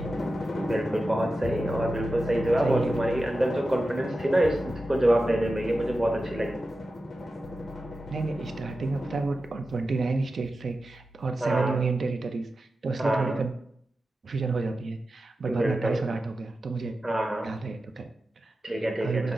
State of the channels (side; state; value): both; normal; correlation 0.92